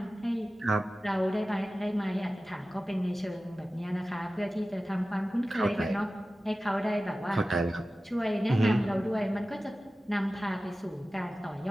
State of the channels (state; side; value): normal; both; correlation 0.95